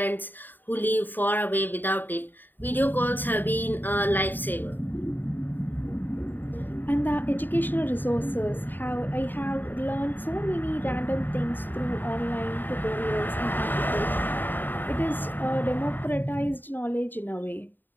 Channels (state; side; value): late; right; 0.091 ms